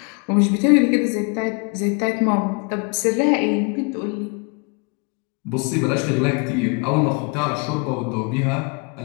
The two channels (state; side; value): quieter; right; 33.9 dB